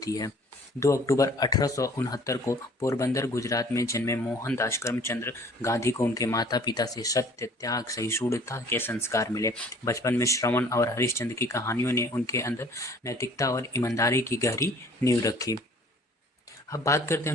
है। 2 अक्टूबर 1869 को पोरबंदर गुजरात में जन्मे मोहनदास करमचंद गांधी को उनके माता पिता से सत्य, त्याग, सहिष्णुता के संस्कार मिले। बचपन में श्रवण और हरिश्चंद्र की कहानियों ने उनके अंदर नैतिकता और ईमानदारी की गहरी नींव रखी। अब बात करते हैं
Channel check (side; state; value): both; normal; correlation 0.53